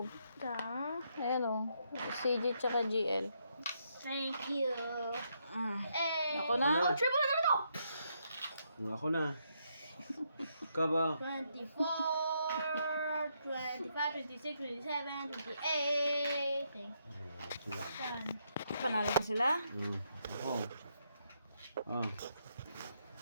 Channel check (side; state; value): both; inverted; correlation -0.77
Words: Ayan CG tsaka GL. Thank you. Hey. Ako na? Oh, triple letter to. Ako na. Kaba. 24, 25, 26, 27, 28. Thank Sila. you. Panalo na sila? Ako. Oh.